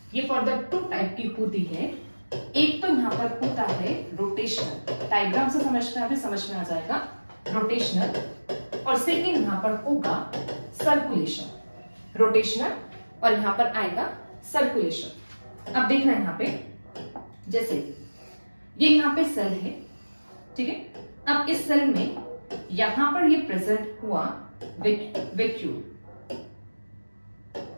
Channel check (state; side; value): inverted; both; correlation -1.00